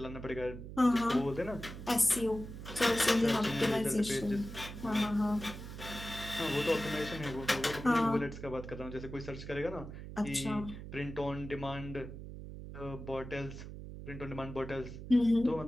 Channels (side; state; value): right; noise; hum, 11 dB below the sound